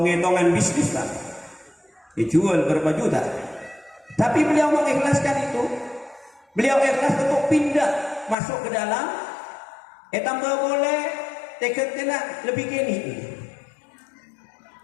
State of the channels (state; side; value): drops out; right; at 8.3 s